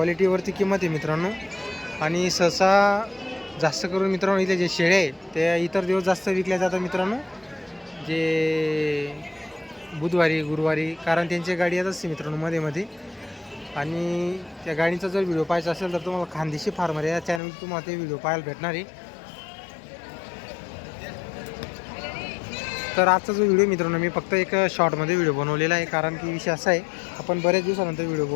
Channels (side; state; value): right; drops out; at 17.4 s